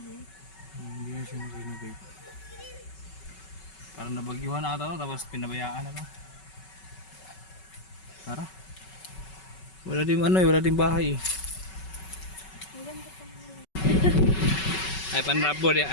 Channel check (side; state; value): right; late; 5.3 ms